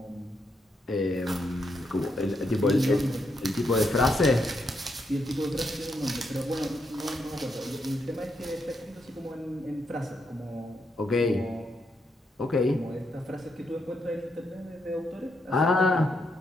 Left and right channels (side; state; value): both; normal; correlation 0.79